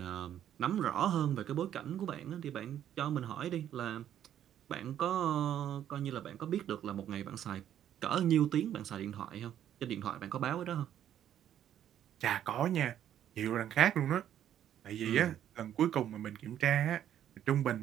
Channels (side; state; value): left; quieter; 10.6 dB